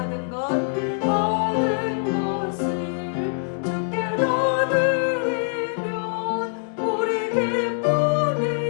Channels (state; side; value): silent; right; digital silence